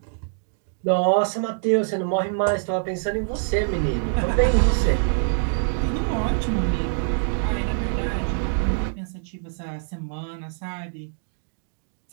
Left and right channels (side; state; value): left; silent; digital silence